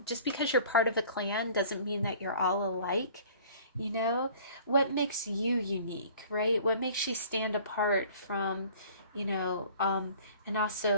just because you're part of a clan doesn't mean that you're all alike. You know, what makes you unique, right? What makes you stand apart from, you know, and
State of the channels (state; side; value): inverted; both; correlation -0.50